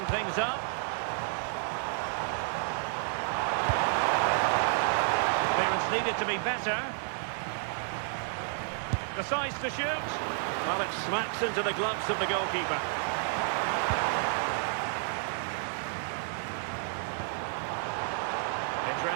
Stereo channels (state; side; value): silent; left; 57 dB below the other